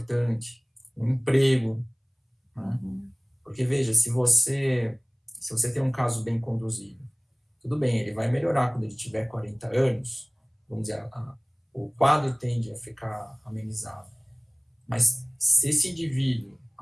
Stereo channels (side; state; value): both; identical; correlation 1.00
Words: um emprego, né? Porque, veja, se você tem um caso bem conduzido, tudo bem, ele vai melhorar quando ele tiver 40 anos, vamos dizer, o quadro tende a ficar amenizado. Mas se esse indivíduo,